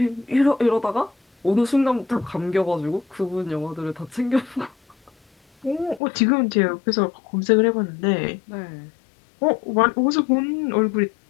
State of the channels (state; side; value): drops out; right; at 6.0 s